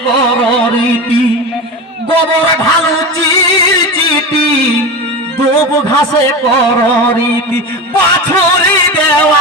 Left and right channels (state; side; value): normal; both; correlation 0.25